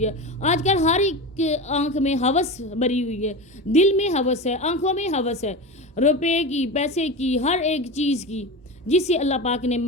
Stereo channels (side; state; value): both; normal; correlation 0.25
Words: है, आजकल हर एक आंख में हवस भरी हुई है, दिल में हवस है, आंखों में हवस है, रुपए की, पैसे की, हर एक चीज़ की, जिससे अल्लाह पाक ने